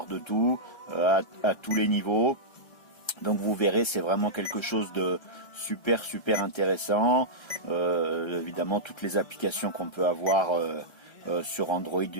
de tout à tous les niveaux. Donc vous verrez, c'est vraiment quelque chose de super intéressant. Évidemment, toutes les applications qu'on peut avoir sur Android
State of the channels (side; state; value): right; late; 1.3 ms